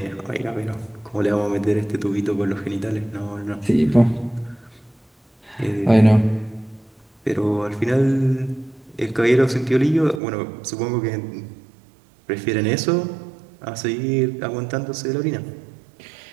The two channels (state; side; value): drops out; left; at 10.2 s